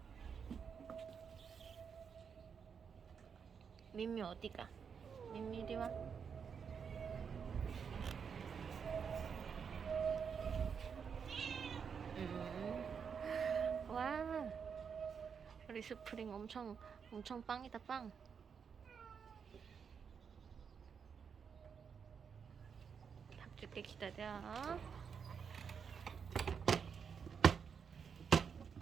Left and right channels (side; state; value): left; quieter; 6.6 dB